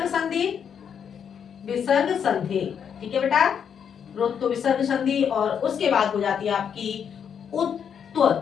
संधि, विसर्ग संधि, ठीक है बेटा। ऋत्व विसर्ग संधि। और उसके बाद हो जाती है आपकी उत्व,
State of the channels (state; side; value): quieter; right; 7.7 dB